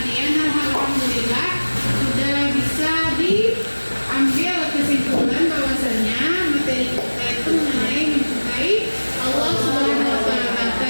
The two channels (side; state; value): both; inverted; correlation -1.00